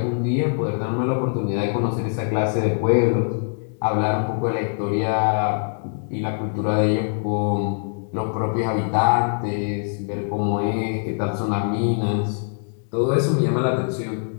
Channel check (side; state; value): right; silent; 62 dB below the other